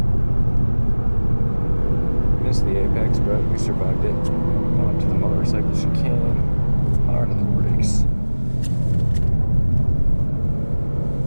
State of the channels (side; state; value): both; inverted; correlation -1.00